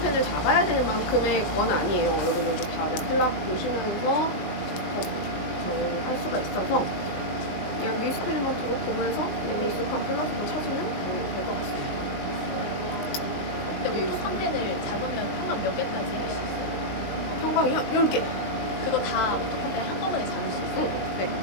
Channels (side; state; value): right; late; 19 ms